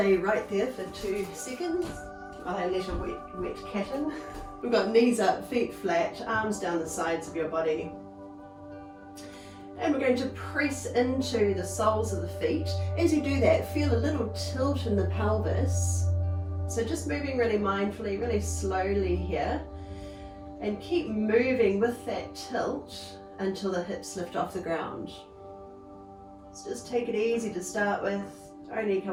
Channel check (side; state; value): both; identical; correlation 1.00